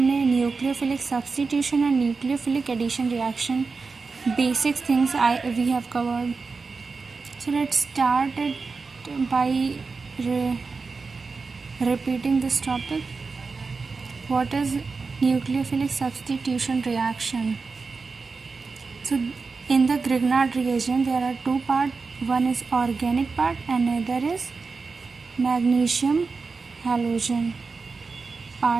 nucleophilic substitution और nucleophilic addition reaction basic things we have covered. So let's start it by repeating this topic. What is nucleophilic substitution reaction? So in the Grignard reagent there are two parts. One is organic part and another is magnesium halogen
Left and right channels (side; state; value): left; quieter; 4.5 dB